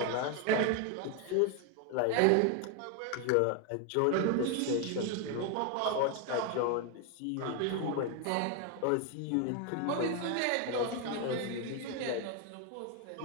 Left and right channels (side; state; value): both; different; correlation 0.01